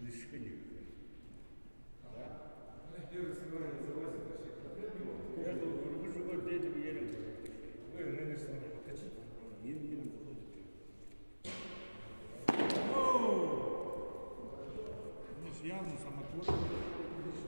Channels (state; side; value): inverted; both; correlation -1.00